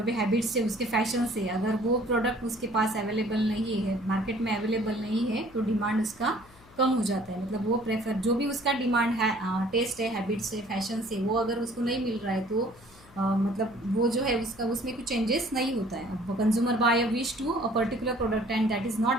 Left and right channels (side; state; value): left; noise; hum, 25 dB below the sound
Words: भी हैबिट्स है उसके, फैशन से, अगर वो प्रोडक्ट उसके पास अवेलेबल नहीं है, मार्केट में अवेलेबल नहीं है, तो डिमांड उसका कम हो जाता है. मतलब वो प्रेफर जो भी उसका डिमांड है, टेस्ट है, हैबिट्स है, फैशन से, वो अगर उसको नहीं मिल रहा है तो मतलब वो जो है उसका उसमें कुछ चेंजेस नहीं होता है. Consumer buy a wish to a particular product and that is